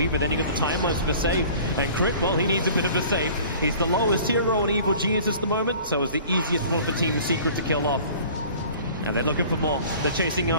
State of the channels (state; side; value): inverted; both; correlation -0.46